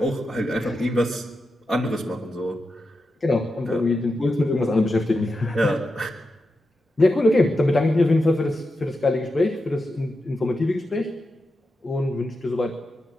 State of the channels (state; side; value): normal; both; correlation 0.89